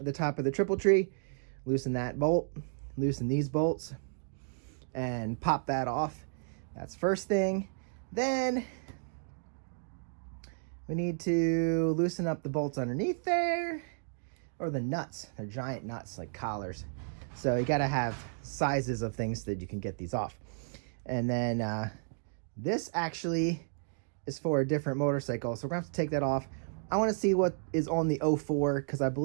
top of the triple tree, loosen that bolt, loosen these bolts, and pop that off. That's first thing. Then we need to loosen up the bolts underneath there, or the nuts. They're giant nuts, like collars. So you gotta have sizes of things that you can get these off. And then this actually is for a different motorcycle, so we're gonna have to take that off. I wanna see what is on the 04, because I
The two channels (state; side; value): silent; left; digital silence